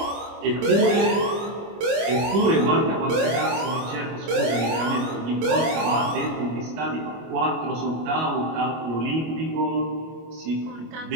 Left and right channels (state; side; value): late; left; 25 ms